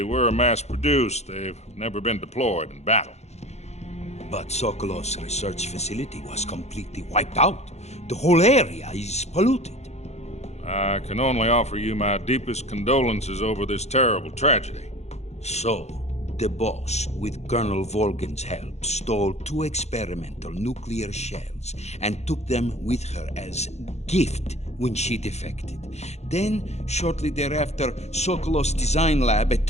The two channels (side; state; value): right; late; 0.32 ms